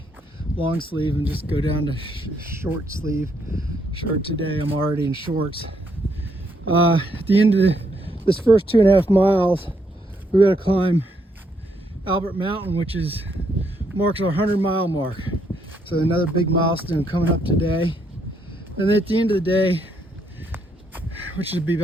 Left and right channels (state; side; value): normal; both; correlation 0.74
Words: long sleeve and just go down to short sleeve shirt today. I'm already in shorts. At the end of this first 2.5 miles, we got to climb Albert Mountain, which marks our 100-mile mark. So another big milestone coming up today. And then at the end of the day, which would be